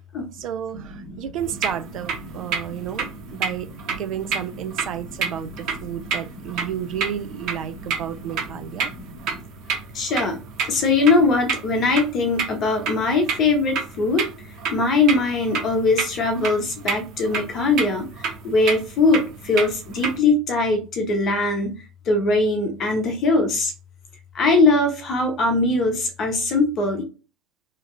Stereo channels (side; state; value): both; normal; correlation 0.30